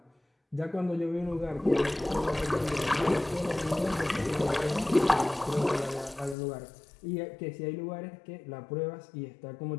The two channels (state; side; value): drops out; right; at 6.4 s